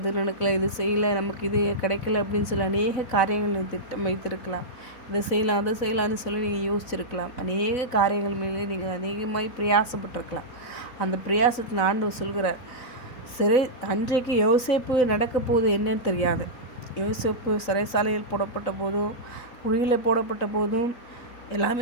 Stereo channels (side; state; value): right; late; 3.9 ms